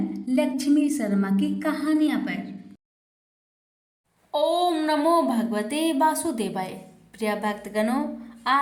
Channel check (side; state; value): both; identical; correlation 1.00